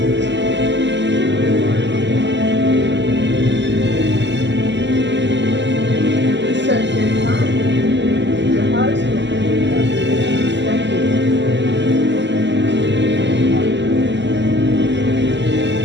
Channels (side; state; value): left; late; 0.52 ms